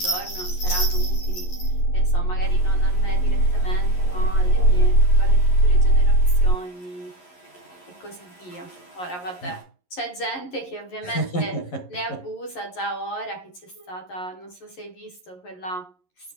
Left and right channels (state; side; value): late; right; 11 ms